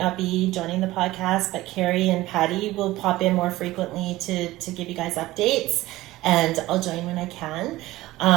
be joining the podcast, but KarriLeigh and Patty will pop in more frequently to give you guys updates, and I'll join when I can.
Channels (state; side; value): quieter; left; 17.5 dB